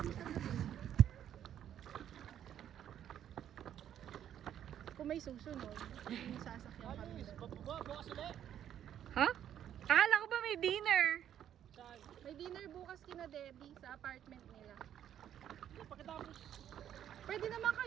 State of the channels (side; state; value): left; quieter; 10.3 dB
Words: sa gabi. Kung may susunod, may sasakyan kami. Ha? Akala ko ba may dinner? May dinner bukas kina Debbie sa apartment nila. Pwede naman